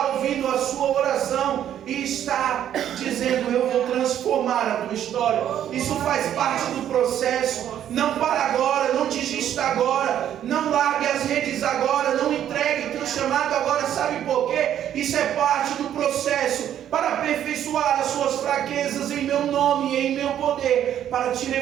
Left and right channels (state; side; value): quieter; left; 10.5 dB